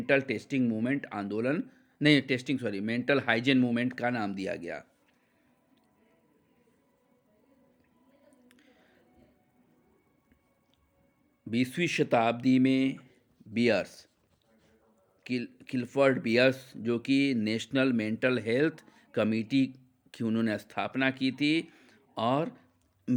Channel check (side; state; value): both; identical; correlation 1.00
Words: टेस्टिंग मूवमेंट आंदोलन नहीं testing sorry mental hygiene movement का नाम दिया गया। बीसवीं शताब्दी में बियर्स किलफर्ड बियर्स, जो कि नेशनल मेंटल हेल्थ कमेटी की उन्होंने स्थापना की थी और